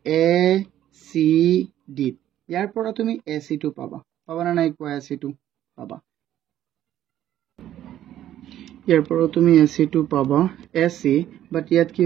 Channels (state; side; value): quieter; left; 12.1 dB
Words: ইয়াৰ পৰা তুমি AC2 পাবা না নাই কোৱা AC2 পাবা ইয়াৰ পৰা তুমি AC2 পাবা AC বাট ইয়াত কি